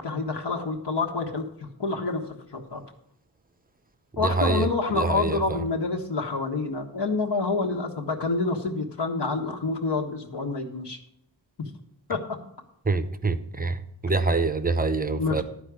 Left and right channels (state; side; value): normal; both; correlation 0.17